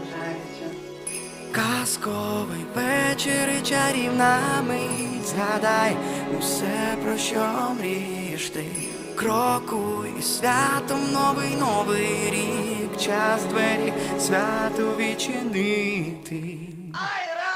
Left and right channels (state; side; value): identical; both; correlation 1.00